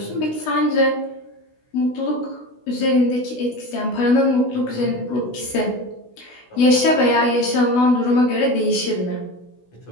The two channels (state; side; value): late; right; 16 ms